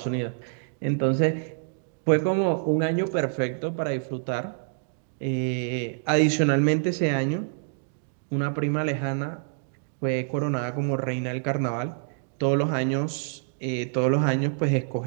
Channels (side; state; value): left; silent; digital silence